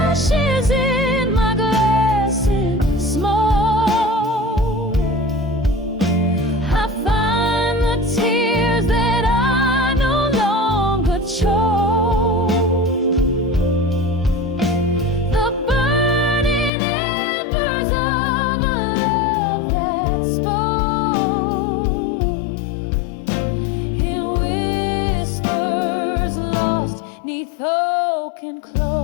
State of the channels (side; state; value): right; drops out; at 16.7 s